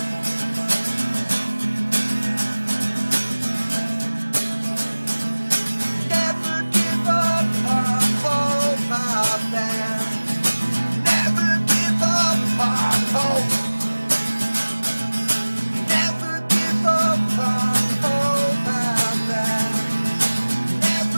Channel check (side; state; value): both; inverted; correlation -1.00